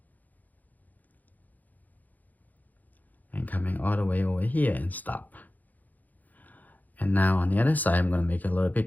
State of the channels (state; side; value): late; right; 0.081 ms